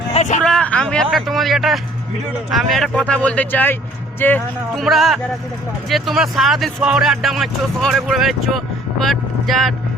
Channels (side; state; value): both; normal; correlation 0.56